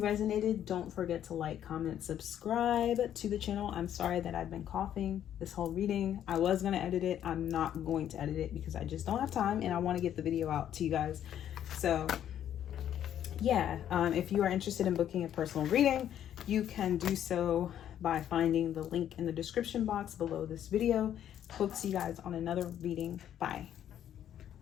don't forget to like, comment, subscribe to the channel. I'm sorry that I've been coughing this whole reading. I was going to edit it. I'm not going to edit it because I just don't have time, and I want to get the video out to you guys. So yeah, if you are interested in booking a personal reading, you can do so by finding the link in the description box below this video. Hope to see you guys on another reading. Bye.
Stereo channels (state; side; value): quieter; right; 10.5 dB